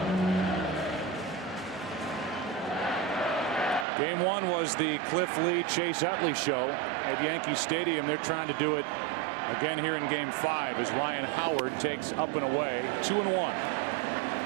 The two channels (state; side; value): drops out; left; at 3.9 s